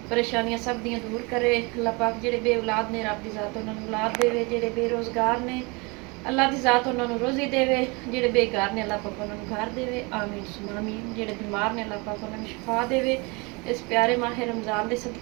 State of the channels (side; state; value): left; quieter; 28.1 dB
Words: परेशानियां सब दियां दूर करे। अल्लाह पाक जेडे बे औलाद ने रब दी ज़ात उन्होंने औलाद देवे, जेडे बेरोज़गार ने अल्लाह की ज़ात उन्होंने रोज़ी देवे, जेडे बेकार ने अल्लाह पाक उन्होंने घर देवे। आमीन सुमा आमीन। जेडे बीमार ने अल्लाह पाक उन्होंने शिफा देवे इस प्यारे माह रमज़ान के